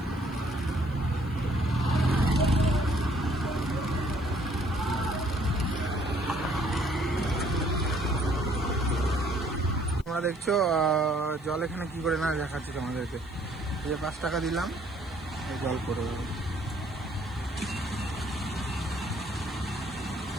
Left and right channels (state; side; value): noise; left; hiss, 30 dB below the sound